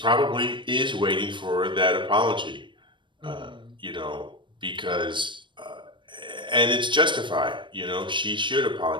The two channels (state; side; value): late; left; 0.23 ms